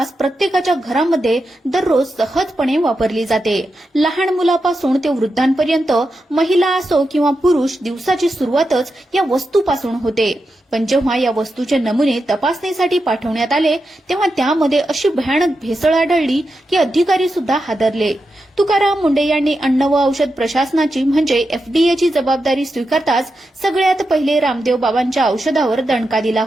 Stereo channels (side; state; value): both; normal; correlation 0.88